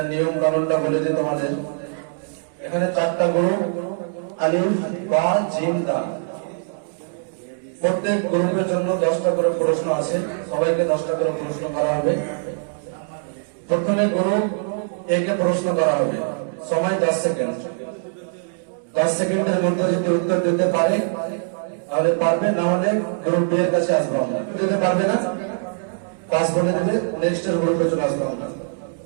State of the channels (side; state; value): left; silent; digital silence